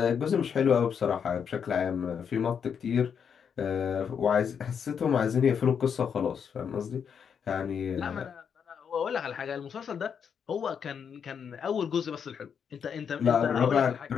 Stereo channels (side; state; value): right; quieter; 7.2 dB